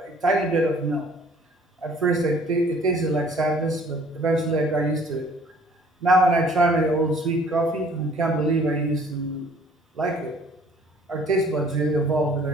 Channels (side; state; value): both; normal; correlation 0.56